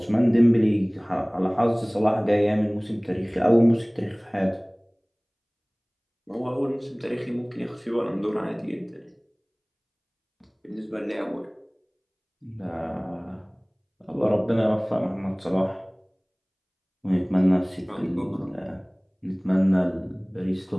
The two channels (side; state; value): both; identical; correlation 1.00